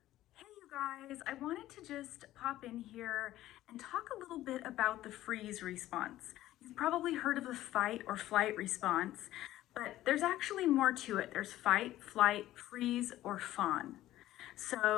Hey you guys, I wanted to just pop in here and talk a little bit about the freeze response. You've probably heard of the fight or flight response, but there's actually more to it. There's fight, flight, freeze, or fawn.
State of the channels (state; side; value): quieter; right; 14.6 dB